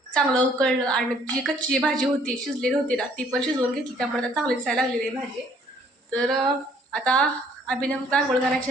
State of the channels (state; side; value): normal; both; correlation 0.61